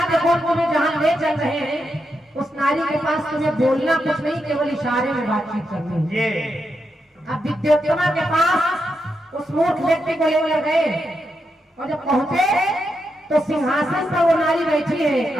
देखो तुम्हें जहाँ ले चल रहे हैं उस नारी के पास तुम्हें बोलना कुछ नहीं, केवल इशारे में बातचीत करनी है। अब विद्योत्तमा के पास उस मूर्ख व्यक्ति को ले गए और जब पहुंचे तो सिंहासन पर वो नारी बैठी है।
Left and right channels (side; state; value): both; normal; correlation 0.84